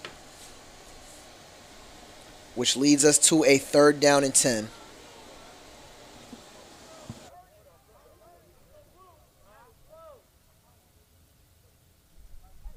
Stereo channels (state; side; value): identical; both; correlation 1.00